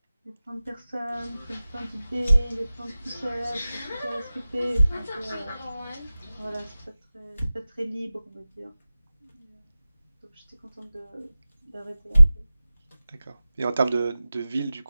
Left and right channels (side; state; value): both; inverted; correlation -0.96